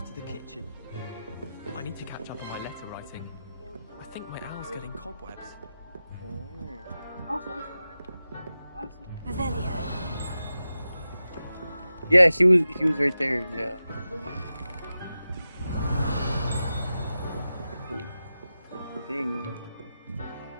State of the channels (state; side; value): inverted; both; correlation -0.92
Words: to the kitchen. I need to catch up on my letter writing. I think my owl's getting cobwebs. Revelio. Yeah, he was right there, yeah. ding.